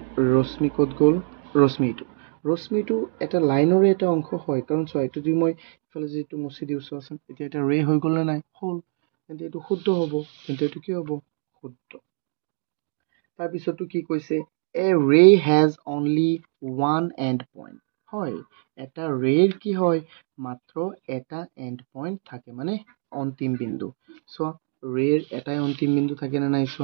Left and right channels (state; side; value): silent; left; 62 dB below the other